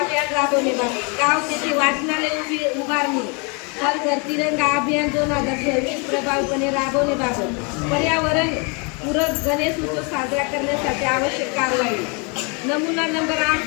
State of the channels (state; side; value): quieter; right; 33.3 dB